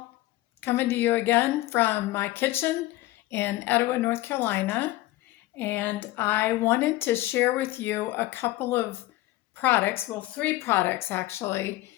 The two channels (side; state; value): right; quieter; 17.3 dB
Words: coming to you again from my kitchen in Etowah, North Carolina. And I wanted to share with you a couple of products, well, three products actually,